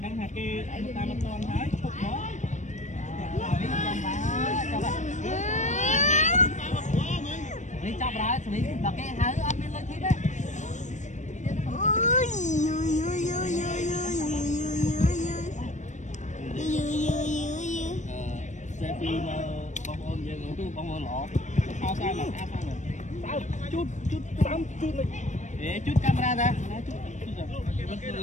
đang hạt kia ta nó con thấy khúc đó. Đi chọc ra, đi đọc cái hái ăn lên lên thịt đấy. Xe phim bông ôn vậy luôn, bông ôn lọ. Sao sao mà sao chút này. Để chút camera ra. Chút rồi. Vẫn cứ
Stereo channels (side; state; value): right; late; 0.35 ms